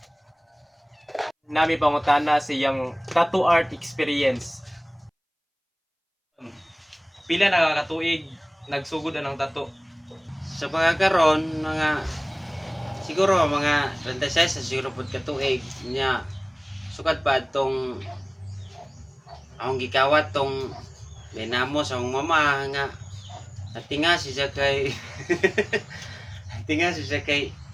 Nami pangutana sa iyang tattoo art experience. Pila na katuig nagsugod anang tattoo? Sa pagkakaroon, siguro mga 26 sa siguro pud katuig niya sukad pa tong akong gikawat tong dinamo sa akong mama nga natinga siya kay natinga siya kay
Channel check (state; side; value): identical; both; correlation 1.00